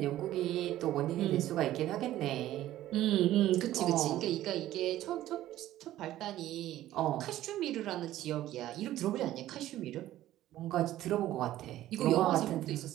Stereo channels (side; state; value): left; quieter; 14.0 dB